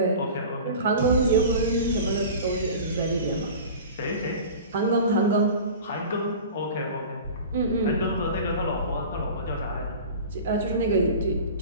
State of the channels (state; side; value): inverted; both; correlation -0.37